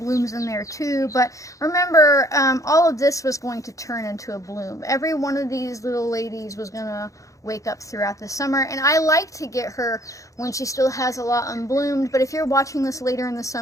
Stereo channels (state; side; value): late; right; 0.16 ms